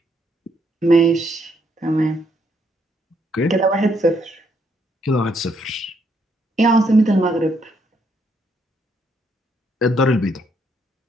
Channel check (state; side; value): normal; both; correlation 0.73